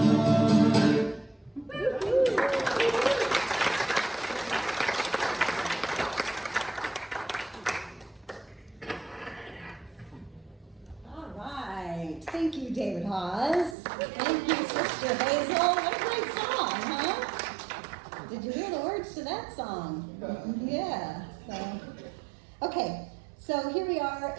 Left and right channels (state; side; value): drops out; left; at 13.8 s